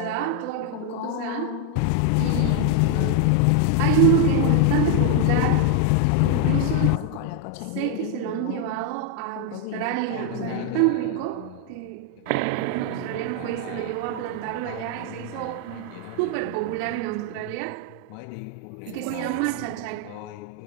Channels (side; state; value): both; different; correlation 0.00